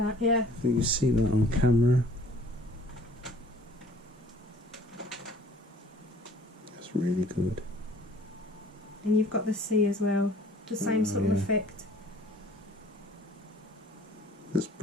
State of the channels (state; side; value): normal; both; correlation 0.53